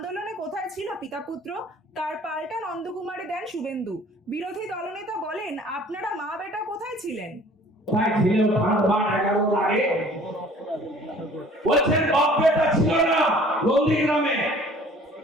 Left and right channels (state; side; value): normal; both; correlation 0.51